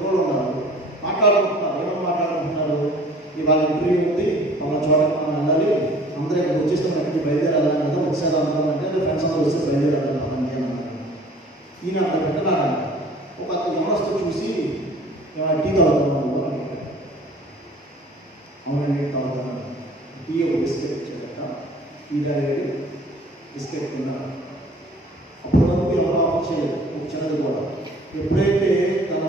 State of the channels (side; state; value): both; normal; correlation 0.50